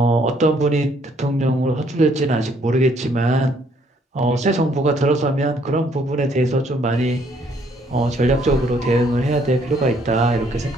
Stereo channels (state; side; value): normal; both; correlation 0.66